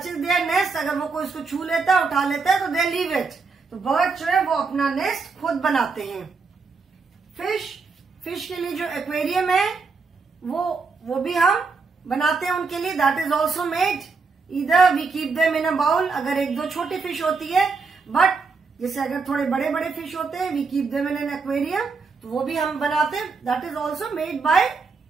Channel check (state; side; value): quieter; left; 4.6 dB